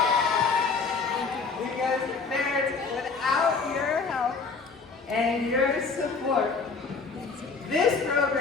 Because parents, without your help and your support, this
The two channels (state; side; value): quieter; right; 4.7 dB